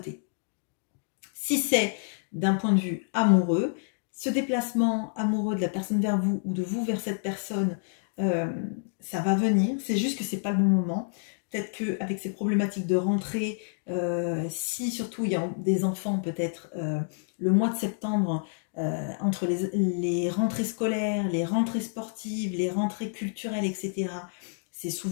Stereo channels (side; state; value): right; silent; digital silence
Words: Si c'est d'un point de vue amoureux, ce déplacement amoureux de la personne vers vous ou de vous vers cette personne, ça va venir. C'est juste que ce n'est pas le bon moment. peut-être qu'avec ces problématiques de rentrée, si surtout il y a des enfants, peut-être le mois de septembre, entre les rentrées scolaires, les rentrées sportives, les rentrées culturelles, etc., c'est